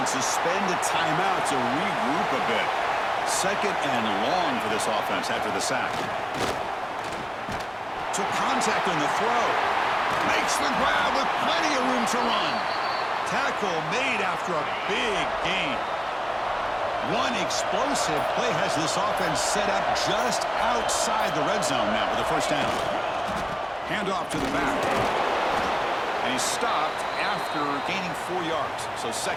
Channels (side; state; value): both; identical; correlation 1.00